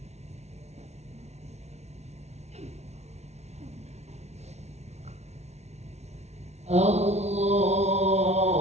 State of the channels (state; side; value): late; left; 0.32 ms